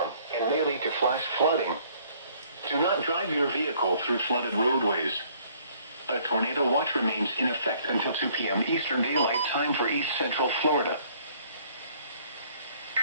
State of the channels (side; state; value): both; inverted; correlation -0.60